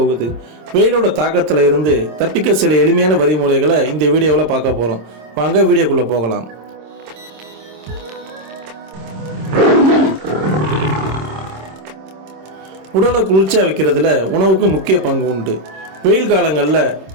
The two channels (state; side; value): late; left; 26 ms